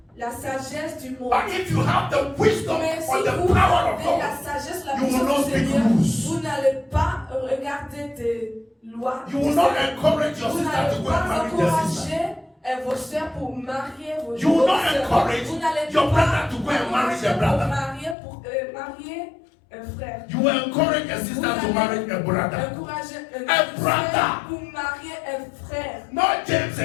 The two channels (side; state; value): right; drops out; at 18.2 s